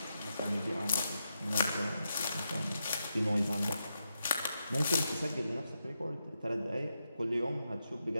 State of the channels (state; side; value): inverted; both; correlation -0.86